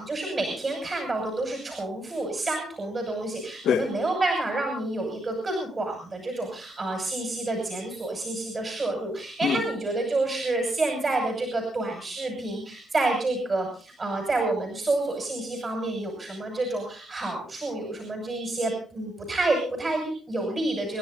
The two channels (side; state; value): both; normal; correlation 0.79